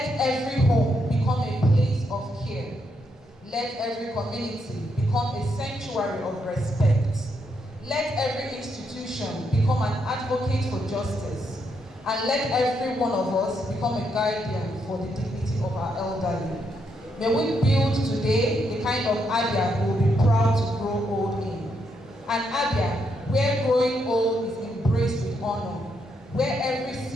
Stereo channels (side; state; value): both; normal; correlation 0.78